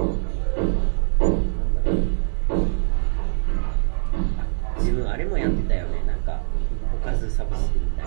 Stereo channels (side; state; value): left; silent; 64 dB below the other